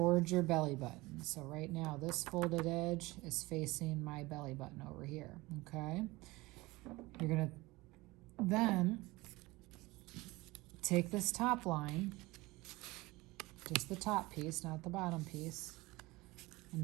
your belly button. So right now this folded edge is facing my belly button over here, okay? You're gonna then take this top line, just the top piece, not the bottom piece,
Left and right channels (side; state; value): left; quieter; 21.2 dB